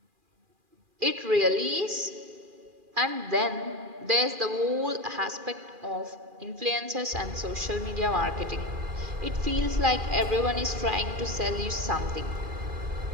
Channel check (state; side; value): late; left; 2.4 ms